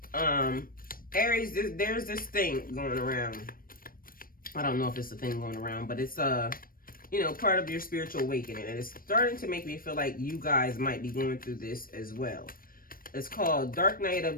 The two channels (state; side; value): late; right; 0.41 ms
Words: Aries, there's this thing going around. I don't know if it's a thing going around, but it's you know, part of your spiritual awakening. And it's starting to make me feel like you guys might be going through this as well. It's called Dark Night